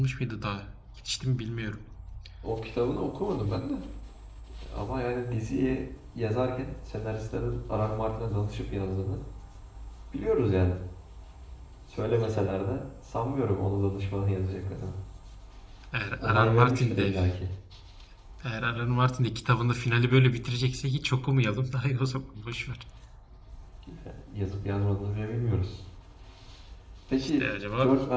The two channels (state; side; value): identical; both; correlation 1.00